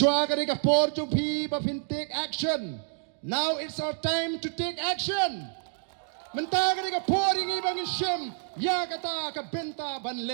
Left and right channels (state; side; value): silent; left; digital silence